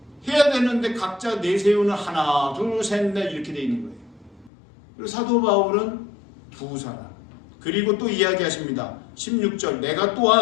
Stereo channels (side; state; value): right; drops out; at 4.5 s